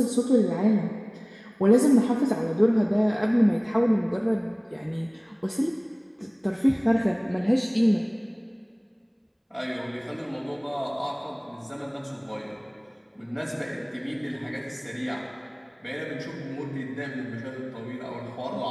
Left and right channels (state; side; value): identical; both; correlation 1.00